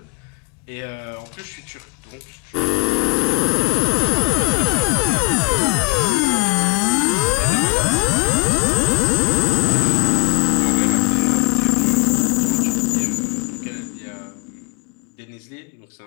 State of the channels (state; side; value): quieter; right; 28.5 dB